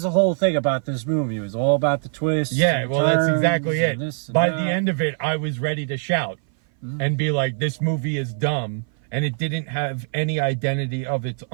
the whole thing about this movie. It was all about the twists. Yeah, well, that's exactly it. By the that. end of it, I was ready to shout and be like, this movie is dumb, and it didn't have any identity of its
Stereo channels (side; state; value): left; silent; 59 dB below the other